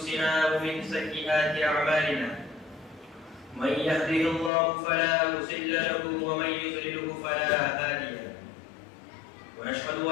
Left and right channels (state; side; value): drops out; right; at 4.5 s